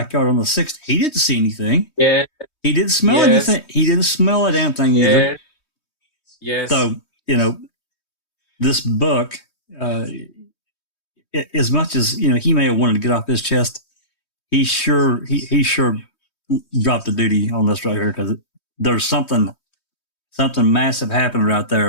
on the 6th. He didn't see anything. Yeah. He didn't smell anything. He didn't smell a damn thing either. Yes. So, this book, as much as, he may have wanted to get off his chest, he sure dropped the duty on this right here because there's something massive happening right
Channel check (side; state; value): right; late; 3.2 ms